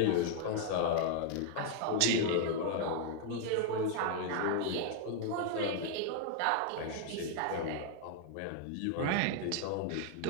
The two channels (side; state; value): both; different; correlation 0.00